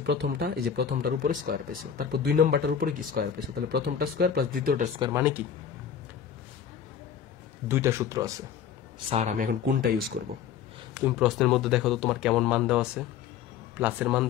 প্রথমটা, এই যে প্রথমটার উপরে স্কয়ার পেয়েছো, তারপর 2 নম্বরটার উপরে কি স্কয়ার পেয়েছো, তাহলে প্রথমটা স্কয়ার প্লাস দ্বিতীয়টার স্কয়ার মানে কি 2টা সূত্র আছে। স্যার আমি এখন কোনটা ইউজ করব? তুমি প্রশ্নের মধ্যে দেখো তো তোমার কেমন মান দেওয়া আছে, প্লাসের মান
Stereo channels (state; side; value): quieter; right; 8.2 dB